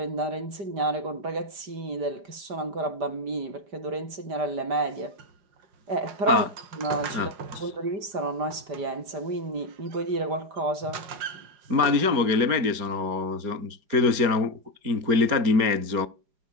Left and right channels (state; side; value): late; left; 4.3 ms